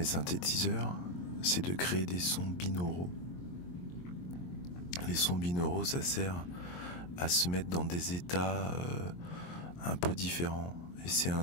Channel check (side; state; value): right; late; 23 ms